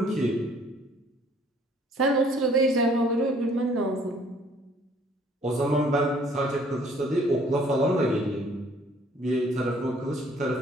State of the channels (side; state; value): both; normal; correlation 0.59